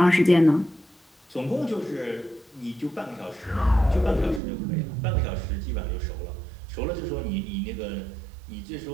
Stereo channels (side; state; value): left; drops out; at 4.4 s